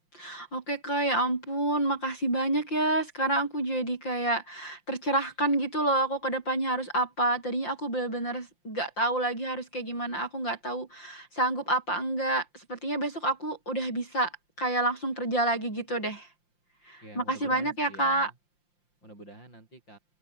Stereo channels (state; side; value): late; right; 5.8 ms